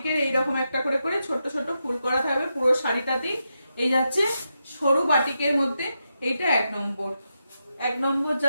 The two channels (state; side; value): inverted; both; correlation -0.86